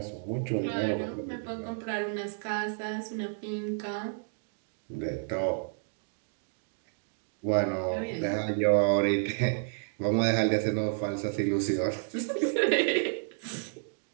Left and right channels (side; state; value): left; silent; digital silence